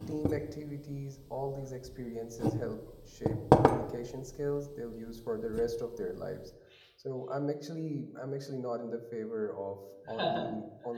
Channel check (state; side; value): identical; both; correlation 1.00